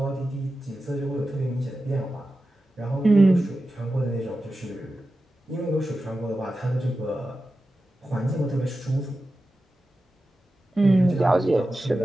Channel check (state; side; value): normal; both; correlation 0.93